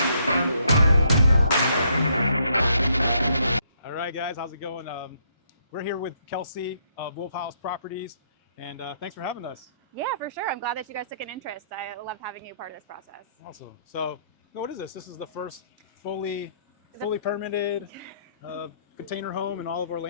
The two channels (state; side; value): inverted; both; correlation -0.70